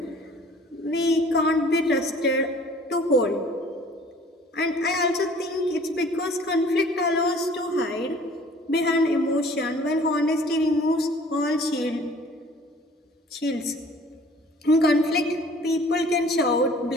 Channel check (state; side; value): normal; both; correlation 0.51